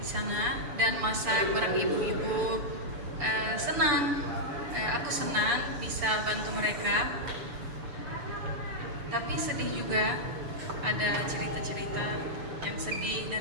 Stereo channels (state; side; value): late; left; 7.0 ms